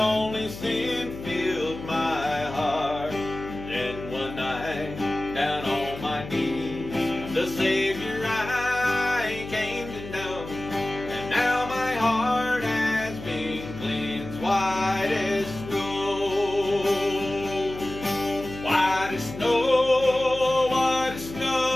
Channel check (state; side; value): noise; left; hum, 12 dB below the sound